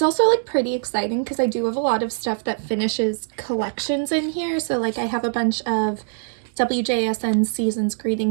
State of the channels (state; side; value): silent; left; 64 dB below the other